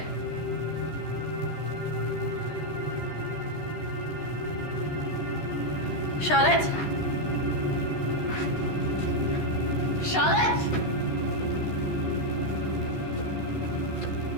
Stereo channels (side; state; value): right; late; 13 ms